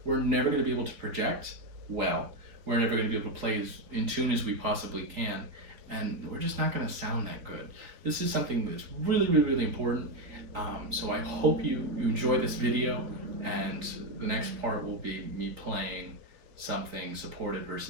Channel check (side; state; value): left; late; 3.9 ms